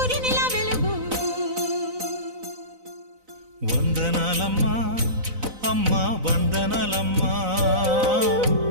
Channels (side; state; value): left; late; 4.0 ms